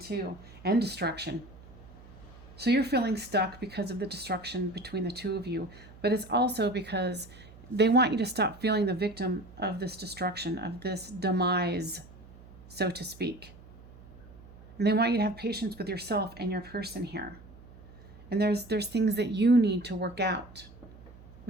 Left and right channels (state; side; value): noise; right; hum, 20 dB below the sound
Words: and destruction. So you're feeling stuck because of the destruction between the two of you, but it's also because they want you to stop feeling the victim of this destruction, of this demise, so to speak. And they want you to have patience with yourself and your person here. And there's things that you need to work out